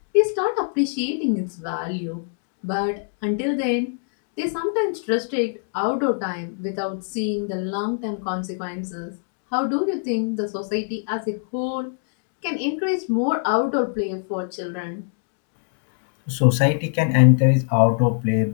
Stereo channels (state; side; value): silent; right; 63 dB below the other